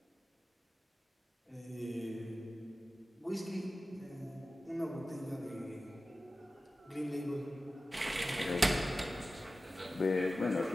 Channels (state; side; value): normal; both; correlation 0.95